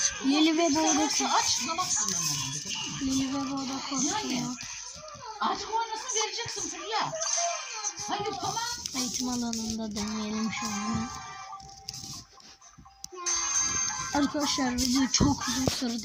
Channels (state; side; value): identical; both; correlation 1.00